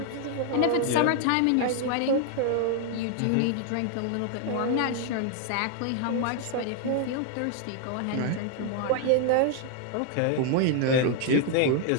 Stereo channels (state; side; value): different; both; correlation 0.00